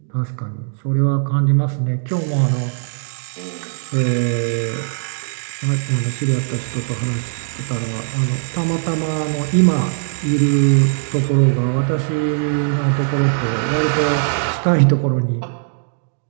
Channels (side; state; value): left; silent; digital silence